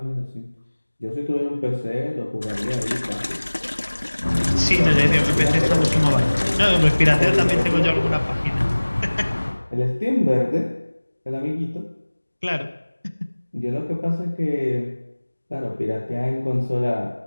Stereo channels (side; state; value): both; inverted; correlation -1.00